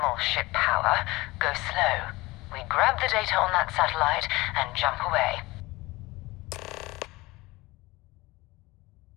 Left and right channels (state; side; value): quieter; right; 21.3 dB